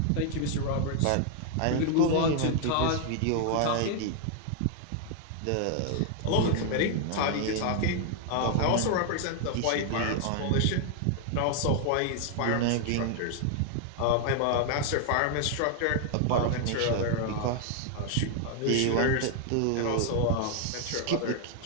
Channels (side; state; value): both; different; correlation 0.00